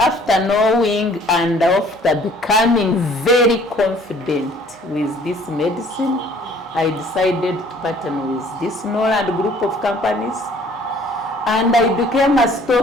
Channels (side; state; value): both; normal; correlation 0.56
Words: knowing and after becoming very confident with this medicine, I decided to partner with this Noland group of companies, and I became a